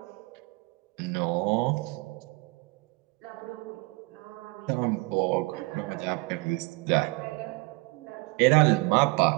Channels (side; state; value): left; quieter; 26.3 dB